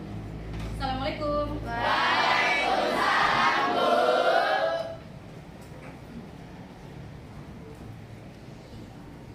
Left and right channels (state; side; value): identical; both; correlation 1.00